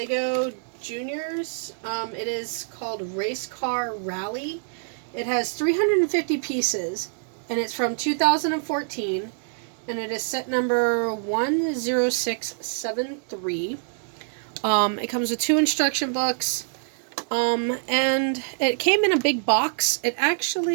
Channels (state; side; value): silent; left; digital silence